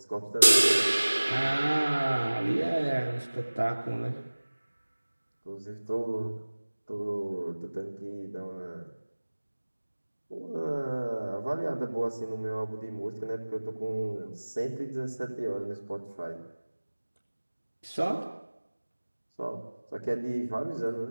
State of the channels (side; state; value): both; inverted; correlation -1.00